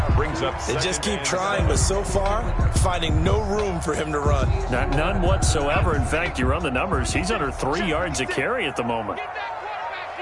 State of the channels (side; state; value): both; identical; correlation 1.00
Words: They just keep trying, but so far, finding no room for him to run. None whatsoever. In fact, you run the numbers. He's under 3 yards a carry at the moment.